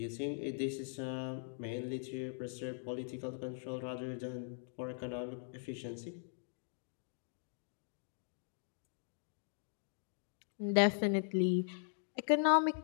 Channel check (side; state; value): right; silent; digital silence